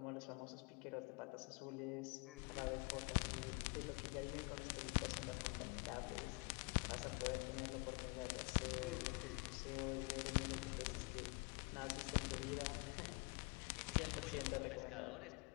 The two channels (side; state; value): right; quieter; 30.9 dB